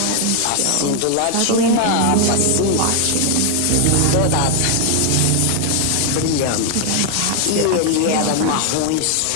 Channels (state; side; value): different; both; correlation 0.00